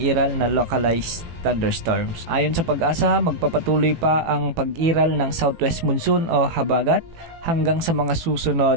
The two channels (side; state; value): left; late; 18 ms